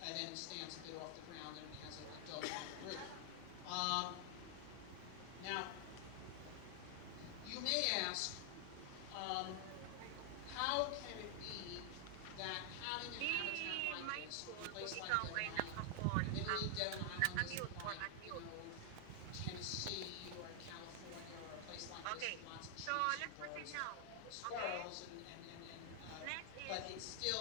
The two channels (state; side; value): different; both; correlation 0.00